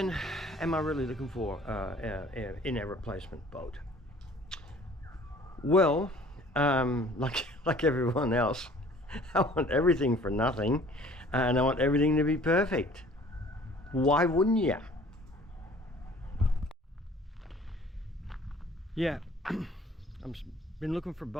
am I really looking for in a replacement boat? Well, like everyone else, I want everything for nothing, and I want everything to be perfect. Why wouldn't you? Yeah, I've been looking for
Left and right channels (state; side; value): normal; both; correlation 0.52